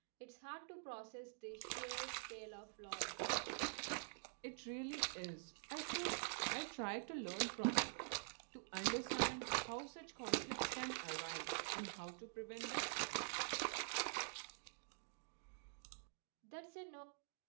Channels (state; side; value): silent; left; digital silence